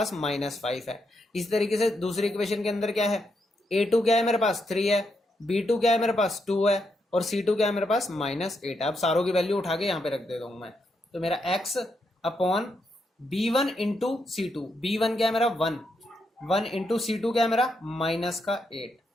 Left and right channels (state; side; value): normal; both; correlation 0.81